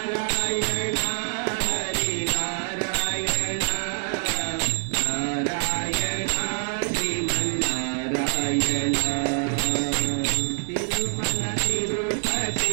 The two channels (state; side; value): silent; left; 61 dB below the other